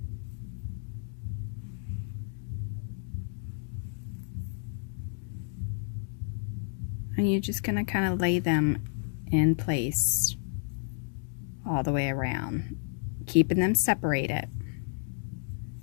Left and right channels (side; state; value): right; silent; digital silence